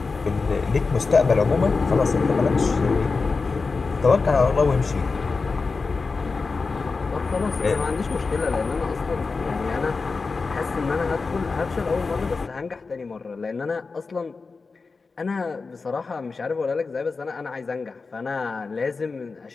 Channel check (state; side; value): quieter; right; 4.3 dB